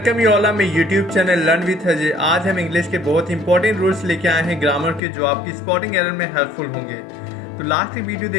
you all on my YouTube channel learn with Ajay. आज हम इंग्लिश के बहुत इंपॉर्टेंट रूल्स लेके आए हैं ग्रामर के, जो आपकी स्पॉटिंग एरर में हेल्पफुल होंगे। तो लास्ट की वीडियो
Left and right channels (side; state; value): right; drops out; at 5.0 s